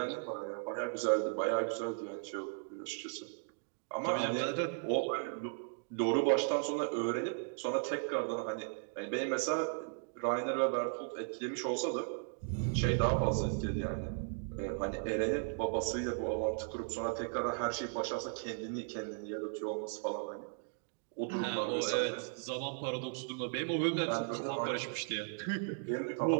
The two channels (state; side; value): silent; left; digital silence